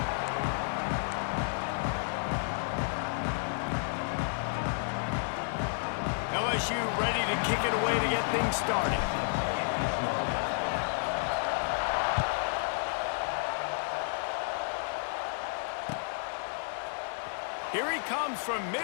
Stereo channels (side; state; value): right; silent; 57 dB below the other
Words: LSU ready to kick it away to get things started. Here he comes from